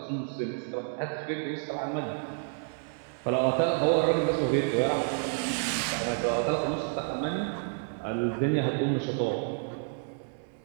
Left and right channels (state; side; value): silent; left; 56 dB below the other